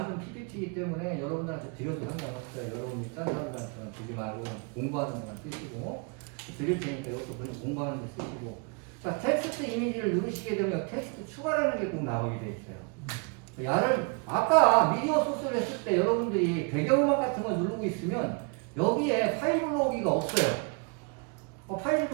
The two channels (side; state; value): left; quieter; 34.4 dB